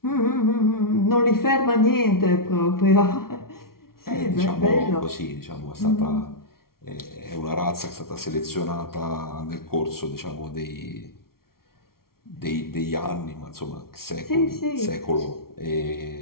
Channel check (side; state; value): right; late; 0.93 ms